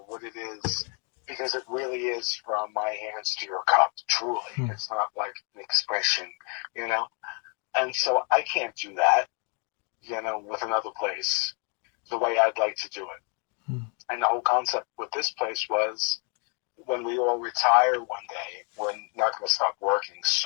what it is, because it really is from my hands to your cup, truly. It's not like an expression, you know? And so I can't do that, you know, with another place the way I'd like to do it. And the whole concept with this place was, when we all retire one day, we're not going to stop working.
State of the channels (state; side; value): quieter; right; 37.7 dB